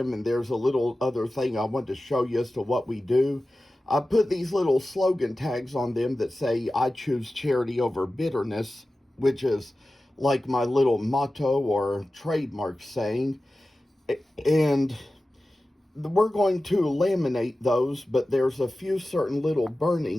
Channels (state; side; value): normal; both; correlation 0.95